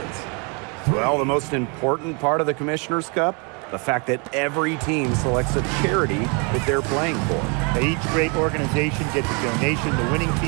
Well, the most important part of the Commissioner's Cup, the fact that every team selects a charity that they're playing for. Each great organization gets a donation. The winning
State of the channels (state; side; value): quieter; left; 33.6 dB